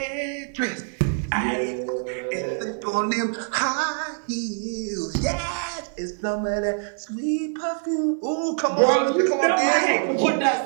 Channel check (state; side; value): silent; left; digital silence